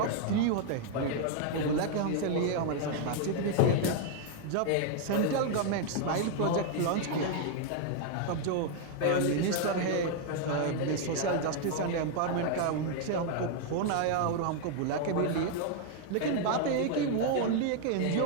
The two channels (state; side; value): different; both; correlation 0.00